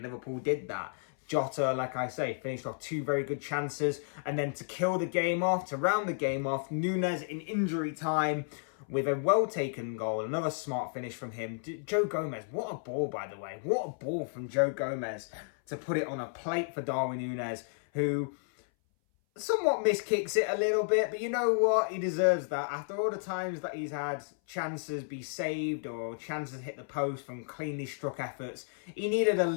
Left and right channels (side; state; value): right; silent; 56 dB below the other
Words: Liverpool did that. Jota, like I say, finished off two very good chances, and then to kill the game off, to round the game off, Nunez in injury time with a well-taken goal, another smart finish from him. Joe Gomez, what a ball, by the way. What a ball from Joe Gomez to put it on a plate for Darwin Nunez, who somewhat miskicks it a little bit, but you know what? He deserves that. After all the times that he's had chances be saved or chances hit the post from cleanly struck efforts, he needed a